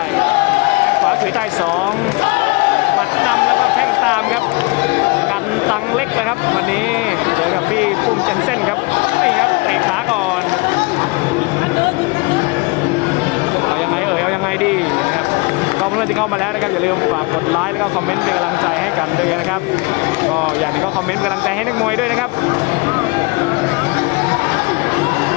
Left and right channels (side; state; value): right; quieter; 27.0 dB